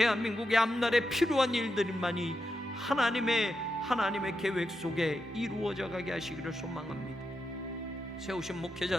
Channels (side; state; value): both; normal; correlation 0.86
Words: 앞날에 필요한 일들만이 하나님의 계획 속에 이루어져 가게 하시기를 소망합니다. 세우신